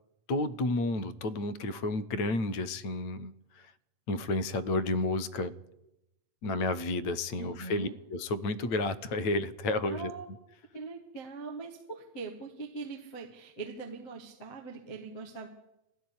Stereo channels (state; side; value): late; right; 8.9 ms